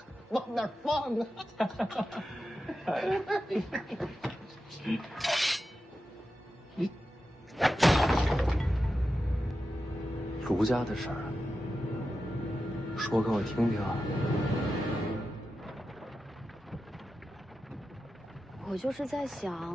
往哪儿放啊？卢家的事儿，说给我听听啊。我就是在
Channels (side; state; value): both; normal; correlation 0.91